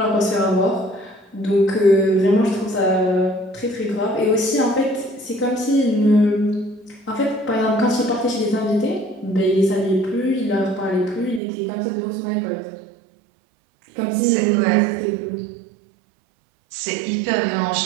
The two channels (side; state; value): left; drops out; at 11.4 s